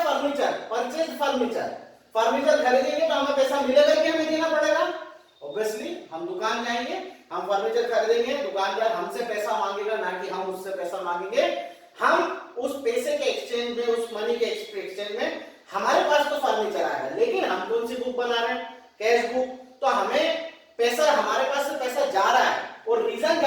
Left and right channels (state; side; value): identical; both; correlation 1.00